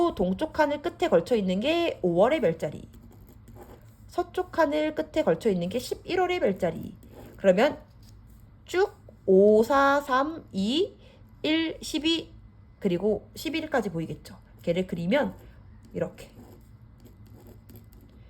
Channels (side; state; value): both; identical; correlation 1.00